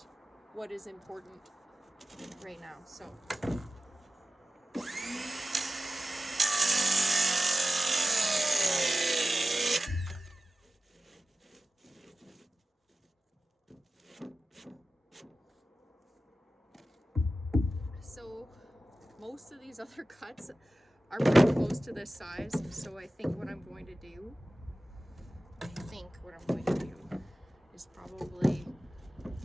what is important right now. So most of these other cuts are pretty close to this size, so I think what I'm going to do is probably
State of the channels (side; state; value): both; normal; correlation 0.95